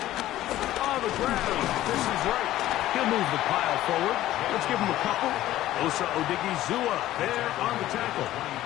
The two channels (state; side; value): quieter; right; 14.4 dB